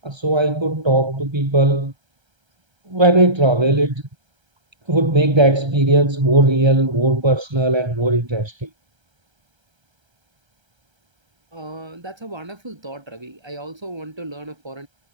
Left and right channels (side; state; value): left; late; 1.3 ms